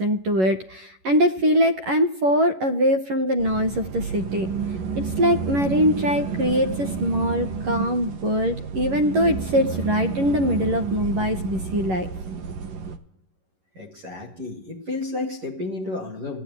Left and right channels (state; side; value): late; left; 11 ms